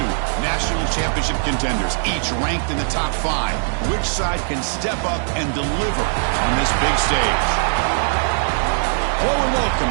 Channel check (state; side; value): silent; left; digital silence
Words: national championship contenders, each ranked in the top 5. Which side can step up and deliver on this big stage? Hello and welcome